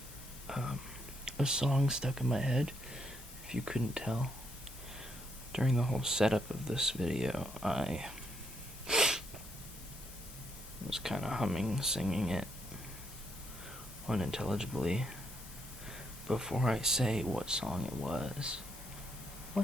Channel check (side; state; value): both; normal; correlation 0.76